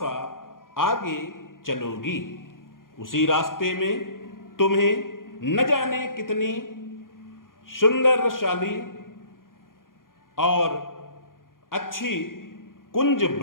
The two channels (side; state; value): right; late; 0.90 ms